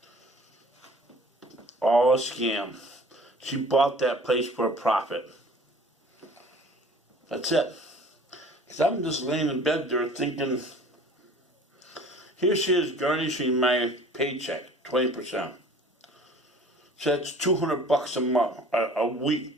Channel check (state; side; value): normal; both; correlation 0.48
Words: All a scam. She bought that place for a profit. That's it. Because I'm just laying in bed there thinking, here she is garnishing my paycheck, 20%. So that's $200 a month, a